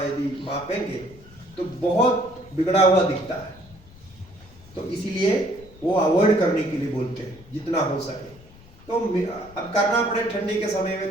यदि मापेंगे तो बहुत बिगड़ा हुआ दिखता है। तो इसीलिए वो अवॉइड करने के लिए बोलते हैं जितना हो सके। तो अब करना पड़े, ठंडी के समय में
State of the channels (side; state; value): left; noise; rumble, 22 dB below the sound